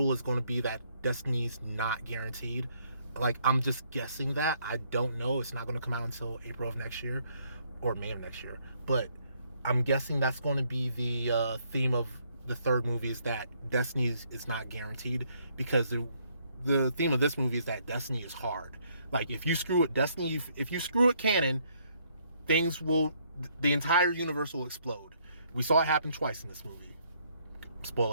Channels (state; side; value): inverted; both; correlation -0.69